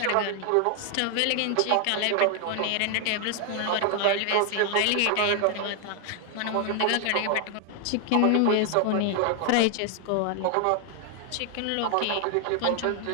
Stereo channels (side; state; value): both; different; correlation 0.00